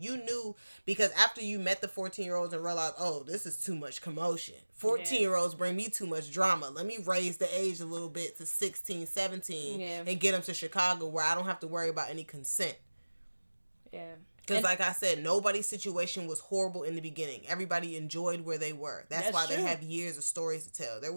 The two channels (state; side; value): inverted; both; correlation -1.00